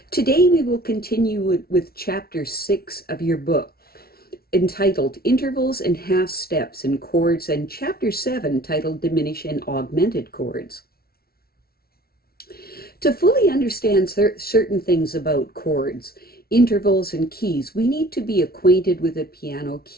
Today we will continue with Chapter 6 of your book, entitled Intervals and Half Steps in Chords, and Chapter 7, titled Diminished and Augmented Chords. To fully understand certain things about chords, intervals, and keys, we need to be acquainted with a piano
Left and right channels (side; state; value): right; late; 0.44 ms